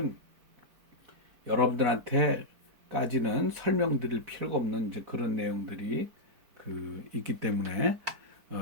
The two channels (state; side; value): late; left; 4.5 ms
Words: 여러분들한테까지는 설명드릴 필요가 없는 이제 그런 내용들이 그 있기 때문에